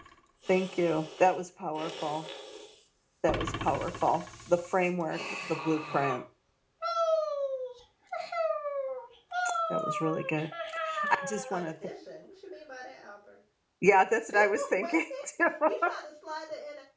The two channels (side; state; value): both; identical; correlation 1.00